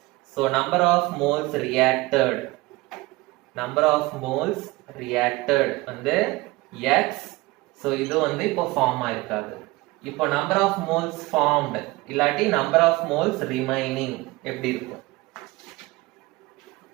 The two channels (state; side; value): quieter; left; 21.1 dB